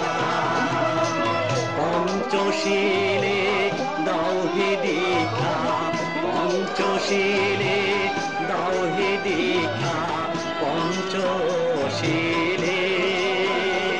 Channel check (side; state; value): both; identical; correlation 1.00